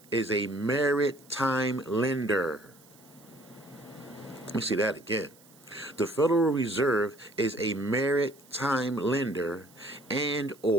is a maritime lender. Let me see that again. The Federal Reserve is a maritime lender and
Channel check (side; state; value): right; noise; hiss, 26 dB below the sound